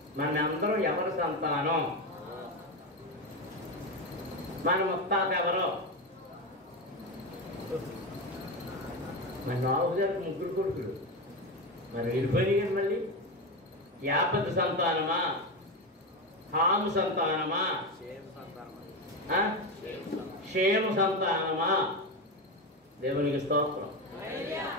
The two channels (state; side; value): normal; both; correlation 0.16